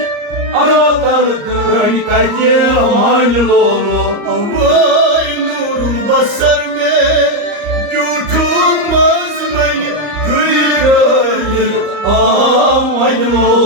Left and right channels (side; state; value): left; late; 34 ms